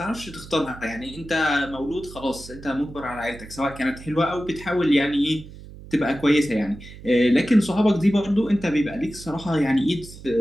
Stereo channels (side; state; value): right; noise; hum, 16 dB below the sound